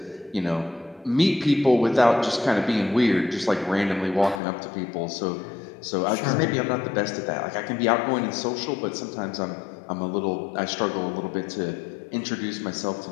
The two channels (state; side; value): drops out; right; at 4.4 s